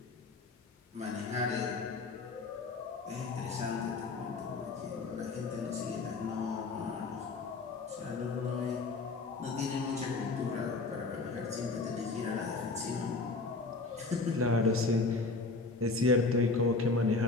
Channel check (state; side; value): quieter; right; 3.7 dB